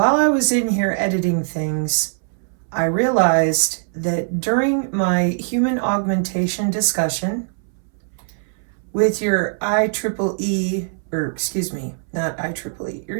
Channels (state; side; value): silent; left; 65 dB below the other